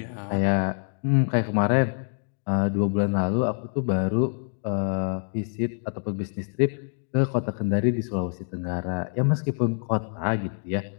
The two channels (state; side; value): silent; right; digital silence